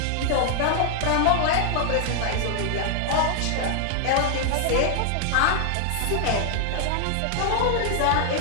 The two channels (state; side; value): different; both; correlation 0.00